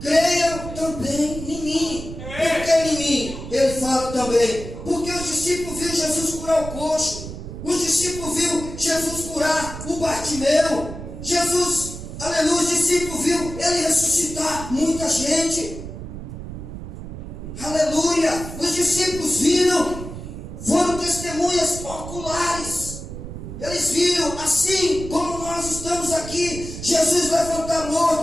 também em mim. Por que em mim? Ele fala também. Porque os discípulos viram Jesus curar o coxo. Os discípulos viram Jesus curar o Bartimeu. Jesus, aleluia, os discípulos viram ele ressuscitar muita gente. Aleluia. Os discípulos viram, foram testemunhas oculares. Eles viram, assim como nós estamos aqui, Jesus levantar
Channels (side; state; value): right; noise; rumble, 10 dB below the sound